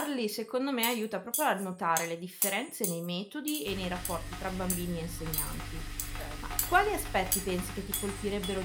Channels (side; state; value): both; identical; correlation 1.00